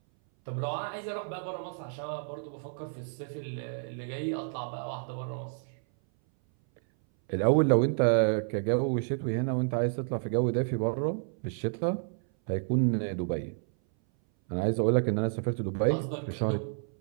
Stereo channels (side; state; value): left; silent; 58 dB below the other